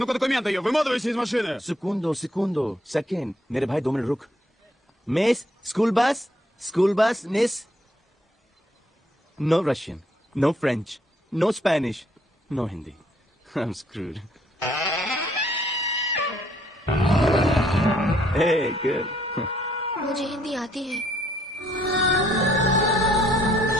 документы ее. Выматывайся из машины. Segundo. Second. मेरे भाई 2 मिनट रुक. Miss, school bus, miss. No Russian, no French, no Spanish, no Hindi. I'm screwed. Hey, good. मुझे हिंदी आती है।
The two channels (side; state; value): both; normal; correlation 0.67